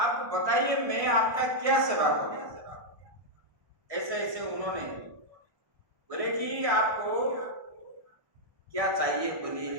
बताइए मैं आपका क्या सेवा करूं। ऐसे ऐसे उन्होंने बोले कि आपको क्या चाहिए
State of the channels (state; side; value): late; left; 1.6 ms